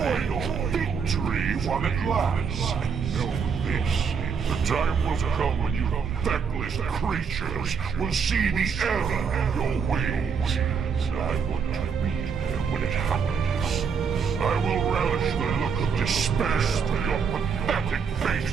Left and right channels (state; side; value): quieter; left; 6.2 dB